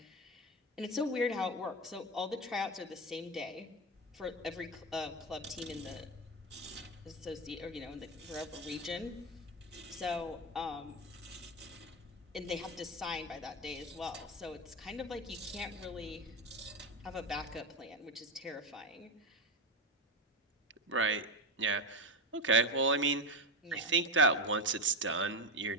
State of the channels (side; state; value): both; normal; correlation 0.13